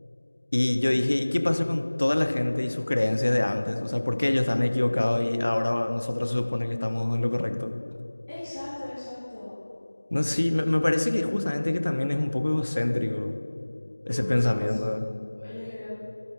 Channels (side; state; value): both; inverted; correlation -1.00